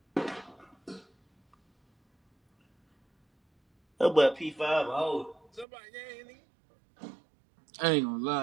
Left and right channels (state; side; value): drops out; left; at 5.7 s